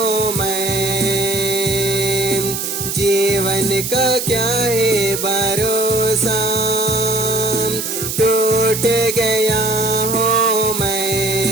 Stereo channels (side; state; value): right; noise; hiss, 4 dB below the sound